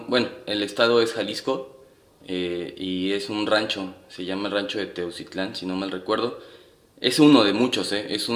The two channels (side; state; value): both; identical; correlation 1.00